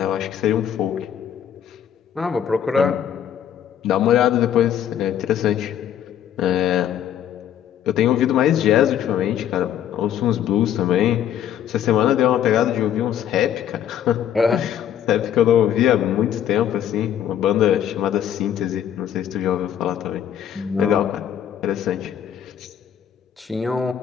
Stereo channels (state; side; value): quieter; right; 9.9 dB